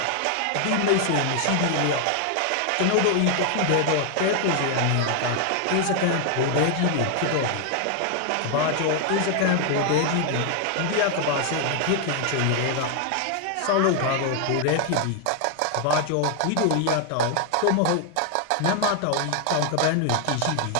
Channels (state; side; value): different; both; correlation 0.00